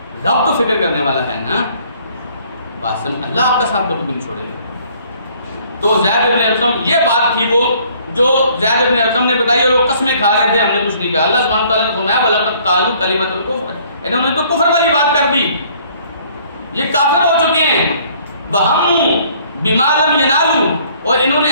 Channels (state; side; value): inverted; both; correlation -0.59